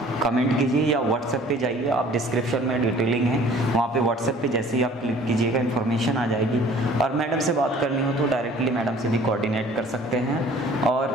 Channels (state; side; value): normal; both; correlation 0.51